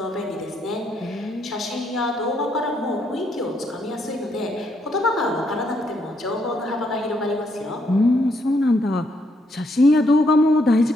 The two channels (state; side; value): normal; both; correlation 0.74